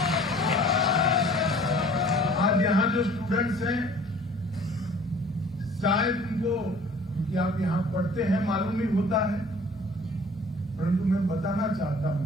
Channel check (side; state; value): both; normal; correlation 0.50